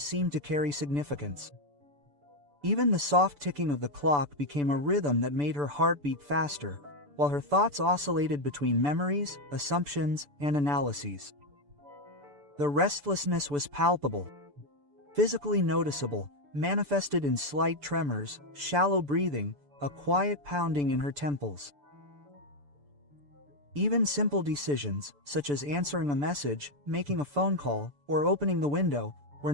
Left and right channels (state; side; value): late; left; 6.9 ms